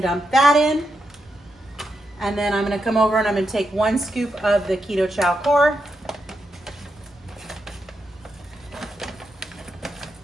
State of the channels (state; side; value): normal; both; correlation 0.84